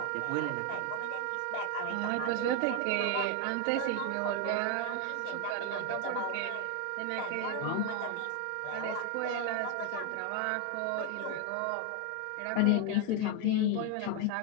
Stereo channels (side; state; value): both; different; correlation 0.01